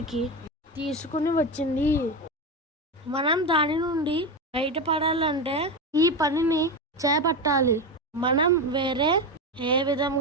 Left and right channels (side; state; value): both; normal; correlation 0.17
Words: తీసుకుని వచ్చింది. మనం దాని నుండి బయటపడాలంటే ఈ పనిని చేపట్టాలి. మనం వేరే ఏ